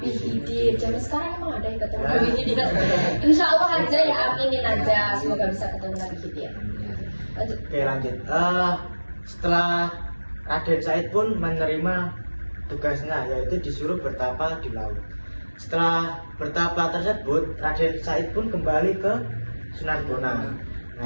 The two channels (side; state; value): both; inverted; correlation -1.00